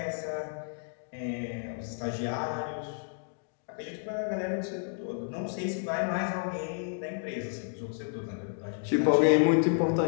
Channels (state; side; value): silent; right; digital silence